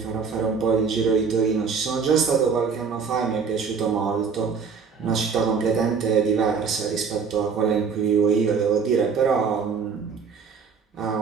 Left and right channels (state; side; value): quieter; left; 5.7 dB